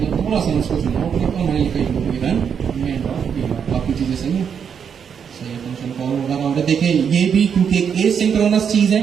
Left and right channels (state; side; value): quieter; left; 7.3 dB